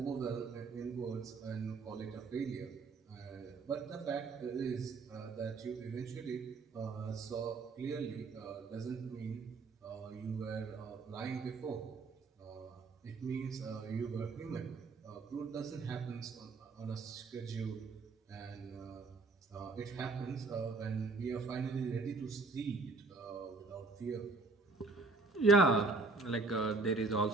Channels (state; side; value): quieter; left; 3.9 dB